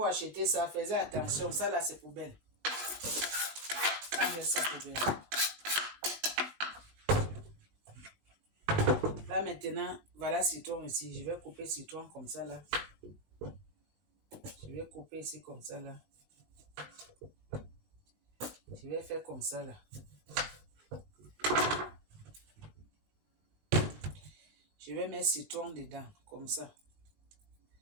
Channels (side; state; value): left; late; 20 ms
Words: achetez ça, faites attention. Ça là, c'est poubelle. On met ça poubelle. Là maintenant, voilà citron ici. Je vais couper citron comme ça là. Je vais couper ici comme ça là. Je vais faire comme ça là. Je vais mettre citron dedans, comme ça.